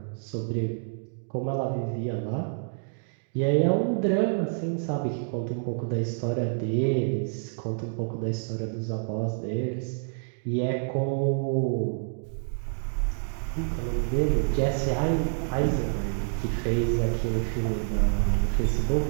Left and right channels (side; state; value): left; silent; digital silence